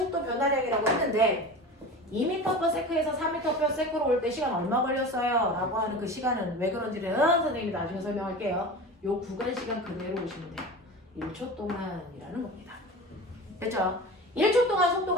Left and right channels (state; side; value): normal; both; correlation 0.32